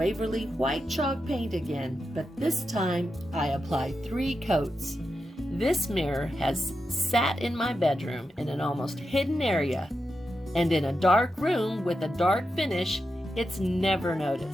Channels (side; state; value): both; normal; correlation 0.88